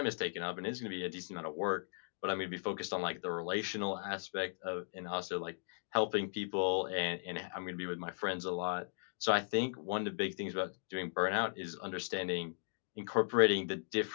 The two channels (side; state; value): right; silent; digital silence